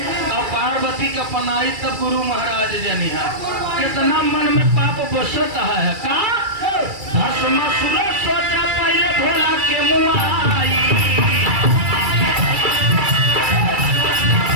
और पार्वती का पनाई तब गुरु महाराज जनी है। कितना मन में पाप बसता है का भस्मासुर सोचा पहले भोला के मुँह आई।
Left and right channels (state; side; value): late; left; 2.3 ms